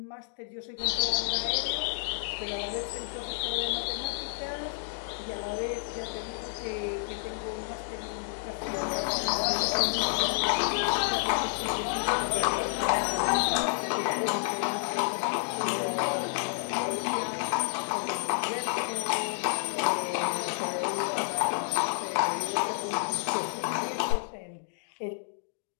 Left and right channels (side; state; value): right; silent; digital silence